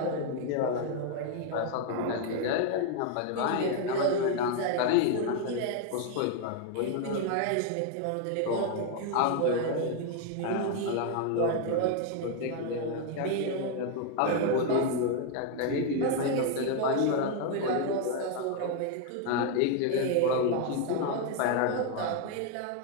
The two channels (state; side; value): different; both; correlation 0.00